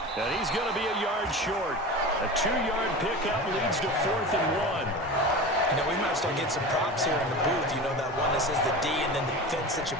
And he's going to be a yard short. A 2-yard pickup leads to 4th and 1. You know, we might start getting some props here in the booth. You know, that one that says the D and then the fence that you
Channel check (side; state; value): both; normal; correlation 0.31